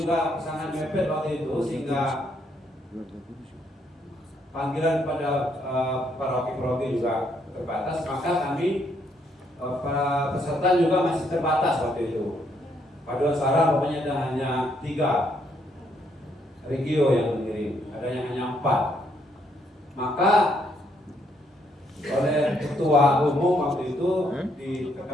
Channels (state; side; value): normal; both; correlation 0.72